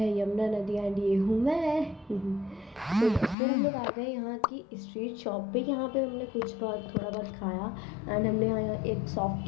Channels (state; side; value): drops out; right; at 3.4 s